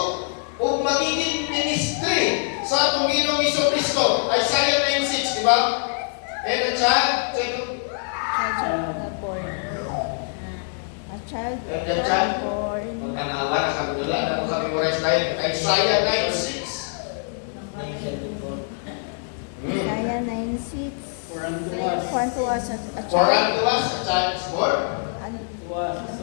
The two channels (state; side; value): silent; right; digital silence